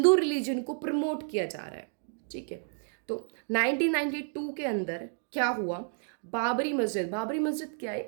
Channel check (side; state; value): left; silent; 55 dB below the other